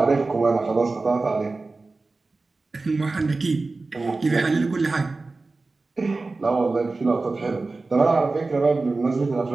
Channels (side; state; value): left; quieter; 3.6 dB